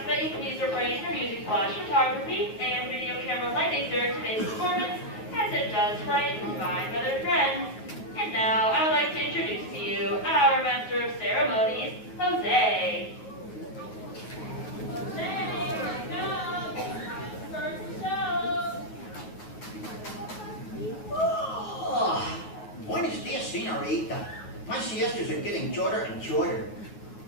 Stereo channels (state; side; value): late; right; 9.4 ms